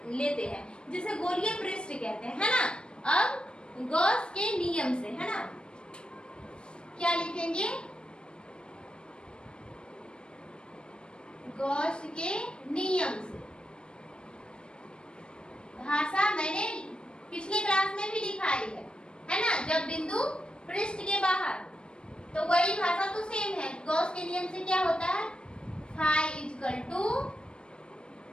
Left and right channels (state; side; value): late; right; 0.054 ms